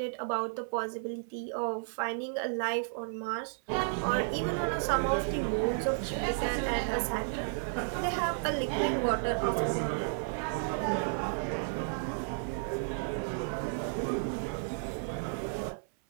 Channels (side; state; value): left; silent; 56 dB below the other